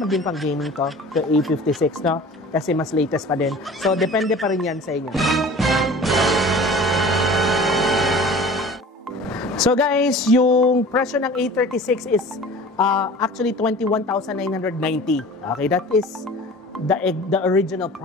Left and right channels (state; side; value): normal; both; correlation 0.42